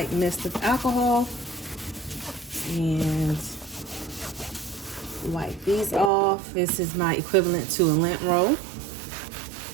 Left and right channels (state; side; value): drops out; left; at 6.1 s